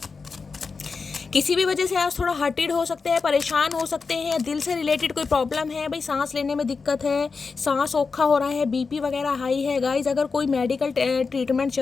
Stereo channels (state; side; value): quieter; right; 4.7 dB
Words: किसी भी वजह से आप थोड़ा हर्टेड हो सकते हैं, परेशान हो सकते हैं, दिल से रिलेटेड कोई प्रॉब्लम है, भाई सांस लेने में दिक्कत है, सांस औखा हो रहा है, बीपी वगैरह हाई है गाइज। अगर कोई मेडिकल ट्रीटमेंट